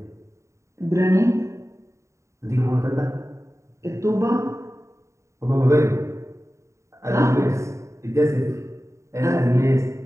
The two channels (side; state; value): left; late; 0.14 ms